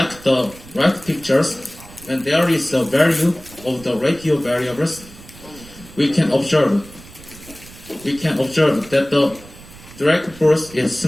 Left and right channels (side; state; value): right; noise; rumble, 20 dB below the sound